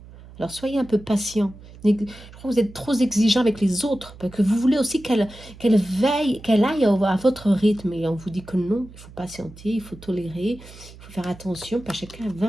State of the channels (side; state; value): right; noise; hum, 19 dB below the sound